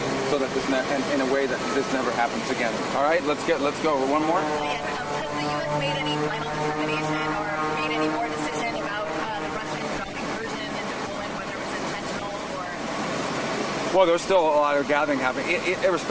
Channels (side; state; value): both; identical; correlation 1.00